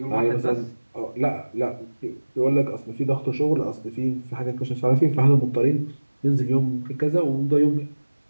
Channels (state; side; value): inverted; both; correlation -1.00